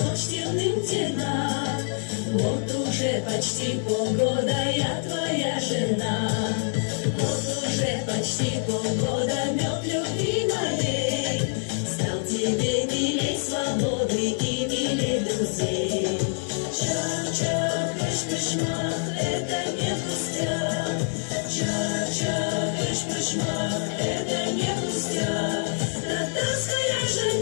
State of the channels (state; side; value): silent; right; digital silence